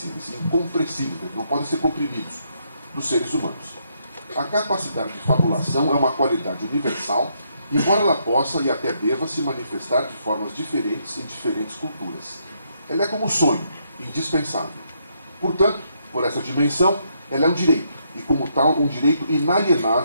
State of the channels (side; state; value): both; inverted; correlation -0.75